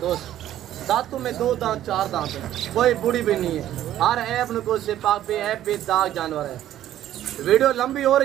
दांतों में 2 दांत 4 दांत है, कोई बूढ़ी भी नहीं है। हर ऐप नुको से पाक पे ऐप पे दाग जानवर है। वीडियो लंबी हो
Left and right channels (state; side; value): quieter; left; 12.4 dB